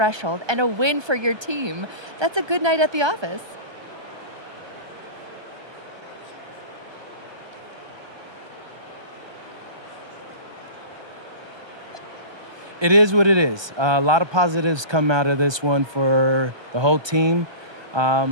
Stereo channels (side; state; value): left; late; 1.2 ms